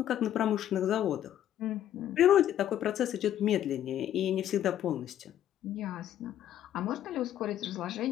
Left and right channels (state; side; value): quieter; right; 11.3 dB